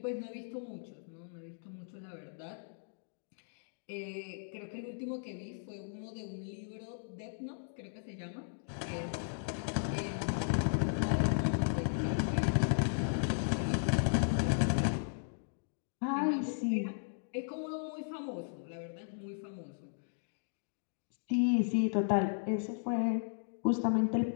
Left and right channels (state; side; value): silent; right; digital silence